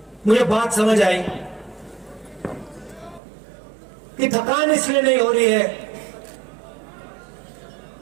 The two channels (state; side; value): drops out; left; at 3.2 s